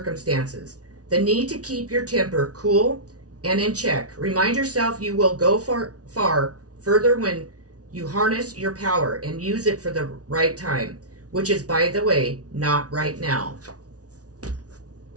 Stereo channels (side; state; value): left; late; 0.68 ms